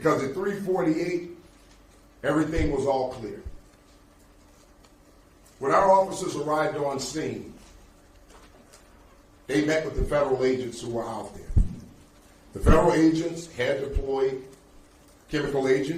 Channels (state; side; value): identical; both; correlation 1.00